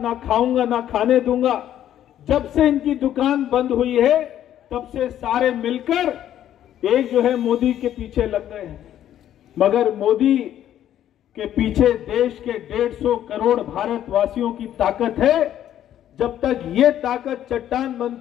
खाऊंगा ना खाने दूंगा। जब से इनकी दुकान बंद हुई है तब से सारे मिलकर एक जो है मोदी के पीछे लग गए हैं। मगर मोदी के पीछे देश के 150 करोड़ भारतवासियों की ताकत है। जब तक ये ताकत चट्टान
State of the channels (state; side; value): quieter; right; 11.3 dB